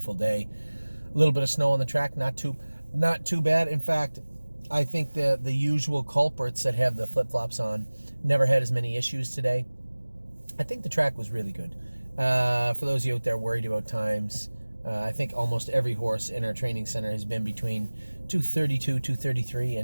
day. A little bit of snow on the track, not too bad. In fact, I think the usual culprits that have the flip-flops on never had as many issues today. I think the track was really good. For those of you out there worried about times, I think almost every horse in our training center has been between 2:32, 2:33,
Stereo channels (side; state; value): both; inverted; correlation -1.00